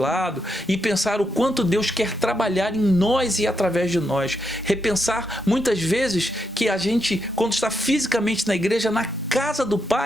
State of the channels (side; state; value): both; normal; correlation 0.81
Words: e pensar o quanto Deus quer trabalhar em nós e através de nós. Repensar muitas vezes que a gente, quando está fisicamente na igreja, na casa do